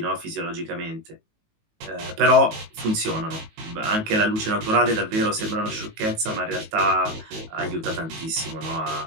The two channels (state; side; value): late; left; 19 ms